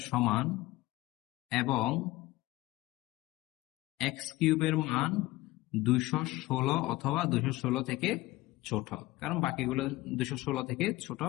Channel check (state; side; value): quieter; right; 18.8 dB